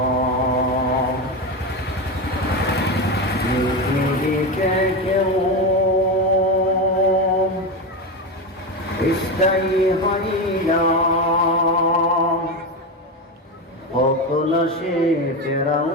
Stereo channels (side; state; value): both; normal; correlation 0.16